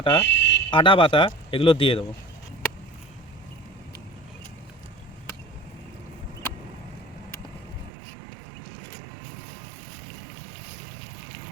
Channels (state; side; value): drops out; left; at 7.9 s